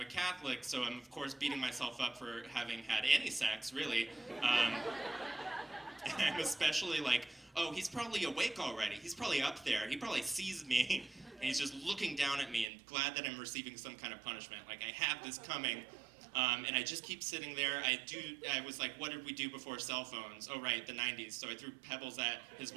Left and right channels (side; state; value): left; drops out; at 12.7 s